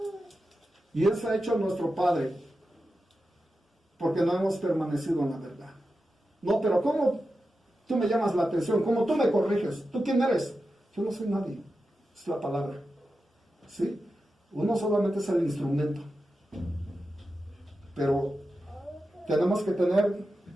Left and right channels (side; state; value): both; normal; correlation 0.91